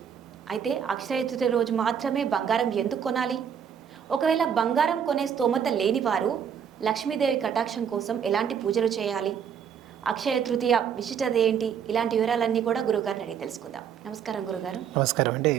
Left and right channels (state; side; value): quieter; left; 7.9 dB